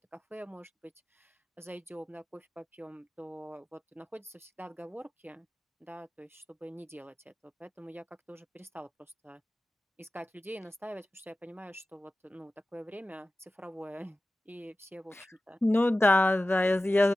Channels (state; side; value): normal; both; correlation 0.95